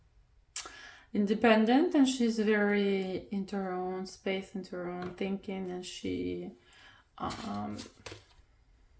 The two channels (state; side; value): identical; both; correlation 1.00